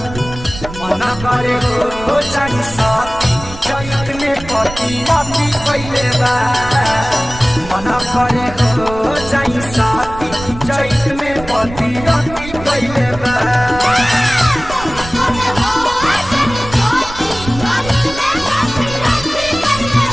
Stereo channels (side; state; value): right; noise; rumble, 12 dB below the sound